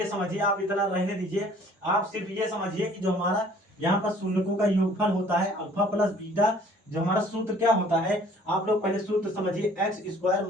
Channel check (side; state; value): both; normal; correlation 0.55